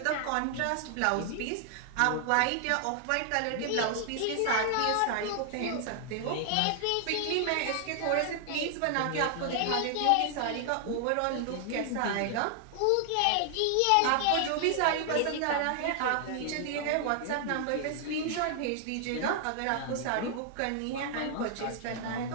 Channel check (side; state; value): both; different; correlation 0.00